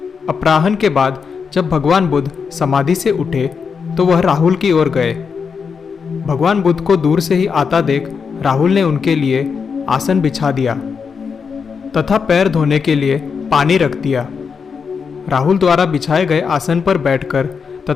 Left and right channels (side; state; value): right; quieter; 5.9 dB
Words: अपराह्न के बाद जब भगवान बुद्ध समाधि से उठे तो वह राहुल की ओर गए। भगवान बुद्ध को दूर से ही आता देख राहुल ने उनके लिए आसन बिछा दिया तथा पैर धोने के लिए पानी रख दिया। राहुल द्वारा बिछाए गए आसन पर बैठकर